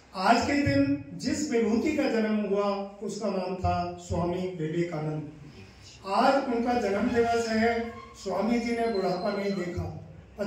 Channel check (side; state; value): both; identical; correlation 1.00